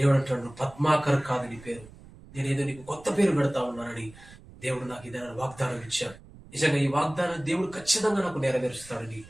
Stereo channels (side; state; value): right; noise; rumble, 21 dB below the sound